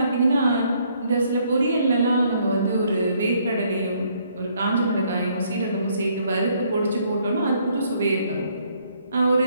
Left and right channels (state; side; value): inverted; both; correlation -0.68